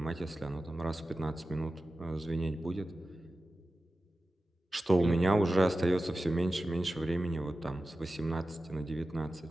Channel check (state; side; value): normal; both; correlation 0.94